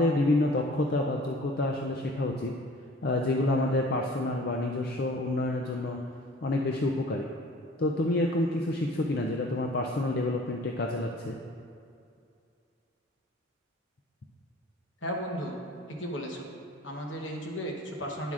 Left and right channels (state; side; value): normal; both; correlation 0.48